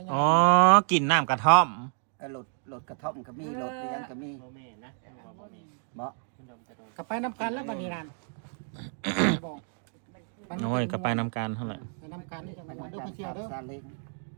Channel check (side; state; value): left; silent; 58 dB below the other